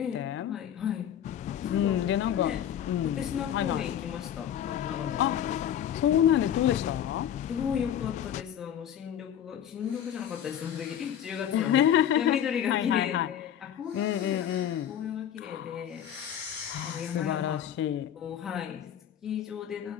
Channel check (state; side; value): quieter; right; 9.9 dB